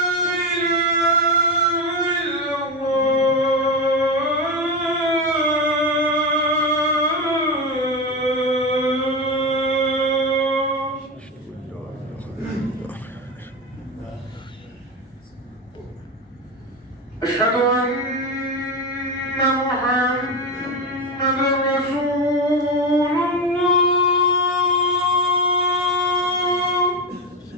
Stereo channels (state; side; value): normal; both; correlation 0.16